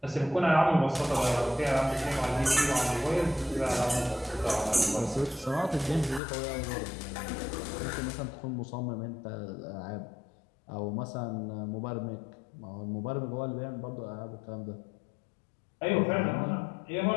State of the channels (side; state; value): right; drops out; at 6.2 s